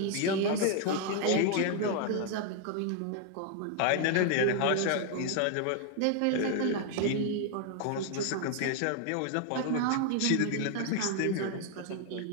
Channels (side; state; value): both; different; correlation 0.00